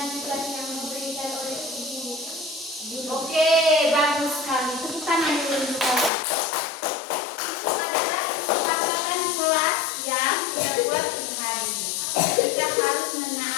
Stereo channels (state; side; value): drops out; right; at 6.1 s